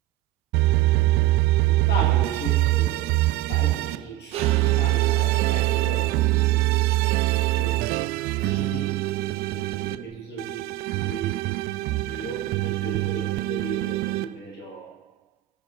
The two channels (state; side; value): quieter; left; 15.4 dB